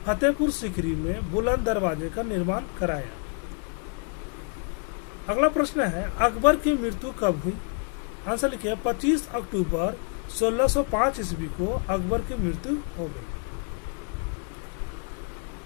फतेहपुर सीकरी में बुलंद दरवाजे का निर्माण कराया। अगला प्रश्न है अकबर की मृत्यु कब हुई। आंसर लिखिए 25 अक्टूबर 1605 ईस्वी को अकबर की मृत्यु हो गई।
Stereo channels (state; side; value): quieter; right; 38.0 dB